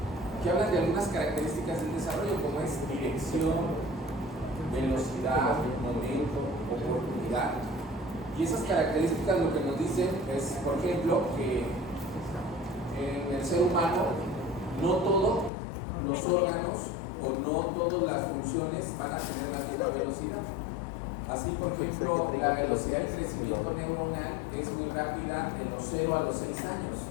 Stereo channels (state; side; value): drops out; right; at 15.5 s